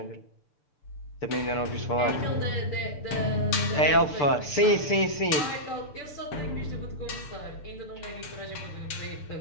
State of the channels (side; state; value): right; late; 6.8 ms